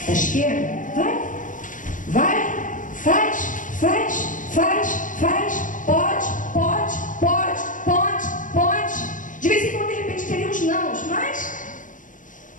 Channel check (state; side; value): late; right; 0.38 ms